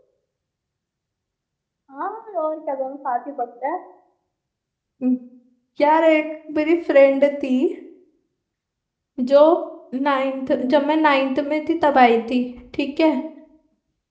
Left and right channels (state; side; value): identical; both; correlation 1.00